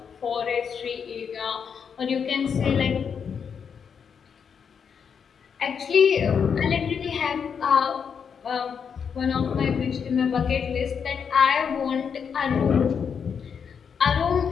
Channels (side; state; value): right; quieter; 6.8 dB